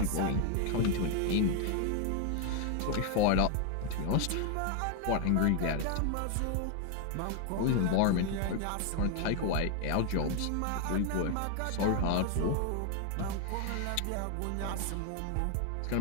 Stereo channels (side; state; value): both; different; correlation 0.00